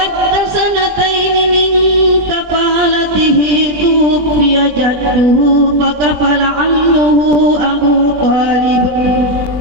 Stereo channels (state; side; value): late; left; 20 ms